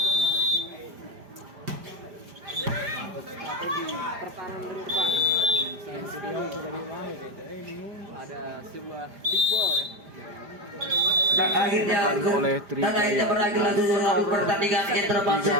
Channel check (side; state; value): left; late; 5.0 ms